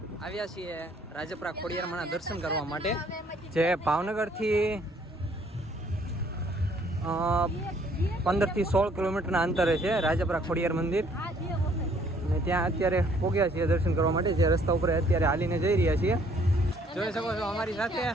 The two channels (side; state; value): both; normal; correlation 0.62